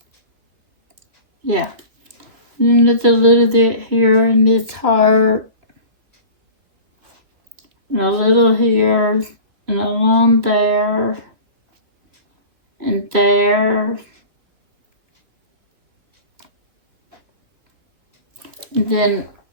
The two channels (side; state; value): left; late; 2.9 ms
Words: Yeah. And there's a little bit here in this heart. And a little here, and along there, and there. And then